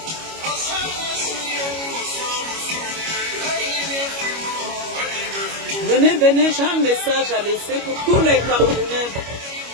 Venez, j'ai un message à laisser pour tous les Camerounais.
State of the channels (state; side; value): late; left; 25 ms